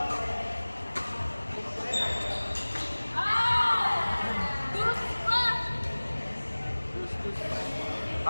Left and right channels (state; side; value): inverted; both; correlation -1.00